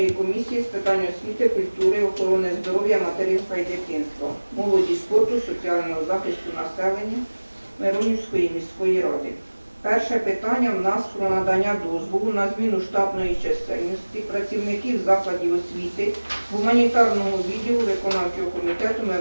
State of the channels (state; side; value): inverted; both; correlation -1.00